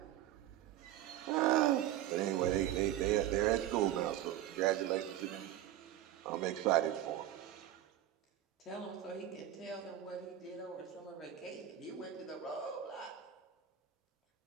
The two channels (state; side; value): quieter; left; 12.2 dB